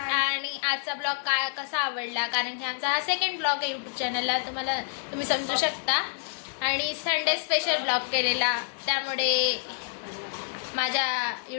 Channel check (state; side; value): silent; right; digital silence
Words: आणि आजचा ब्लॉग काय कसा आवडला, कारण की आमचा हा सेकंड ब्लॉग आहे यूट्यूब चॅनलला, तुम्ही समजू शकता. आणि संडे स्पेशल ब्लॉग केलेला, त्यामुळे माझ्या